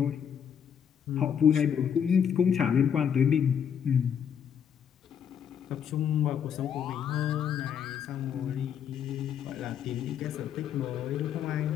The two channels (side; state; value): right; quieter; 8.1 dB